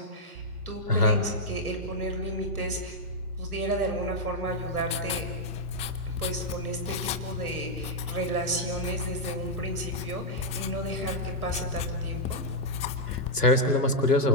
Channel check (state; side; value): normal; both; correlation -0.04